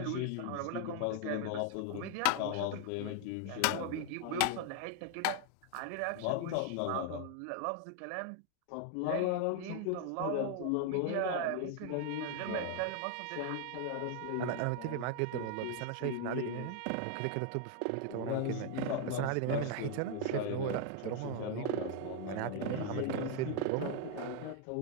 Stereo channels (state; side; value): different; both; correlation 0.00